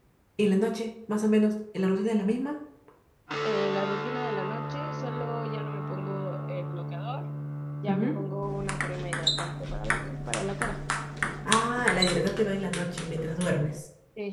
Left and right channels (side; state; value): both; identical; correlation 1.00